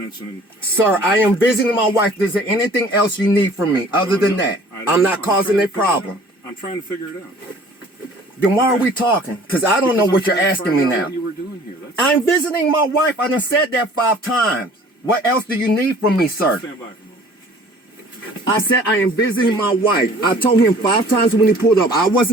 and... Sir, I am visiting my wife. Is there anything else you need from me other than that? I'm not causing a problem. I'm trying to figure it out. Then why are we talking? Because I don't know what you're asking me now. What you were doing here. I'm visiting my wife. I done said that 5 times. What else do you need from me, sir? Stand by for a moment. I said I am visiting my wife. I told him 5 times when he pulled up. I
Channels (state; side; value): normal; both; correlation 0.51